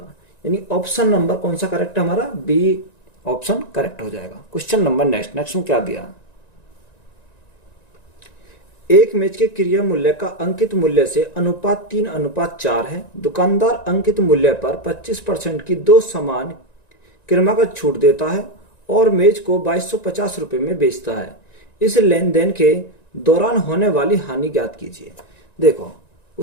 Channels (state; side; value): late; right; 1.9 ms